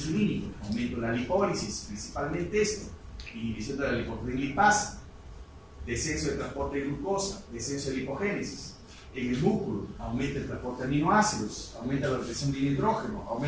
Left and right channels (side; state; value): both; identical; correlation 1.00